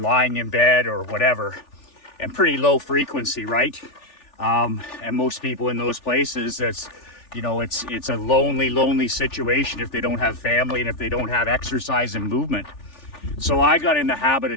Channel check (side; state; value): right; late; 3.4 ms